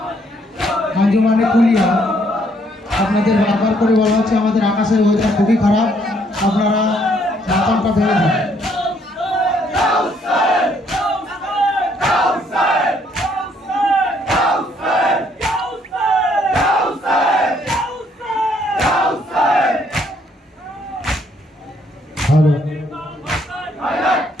আঞ্জুমানে কুলিয়া আপনাদের বারবার করে বলা হচ্ছে আমাদের আকাশের ওয়েদার খুবই খারাপ, আপনারা মাথনটা ভেঙে দিন।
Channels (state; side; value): normal; both; correlation 0.68